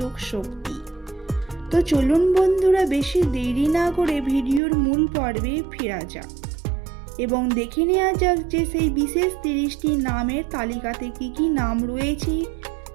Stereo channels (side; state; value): left; drops out; at 4.6 s